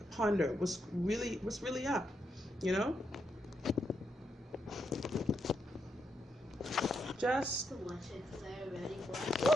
ponder what's really up, you know? Just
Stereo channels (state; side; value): normal; both; correlation 0.81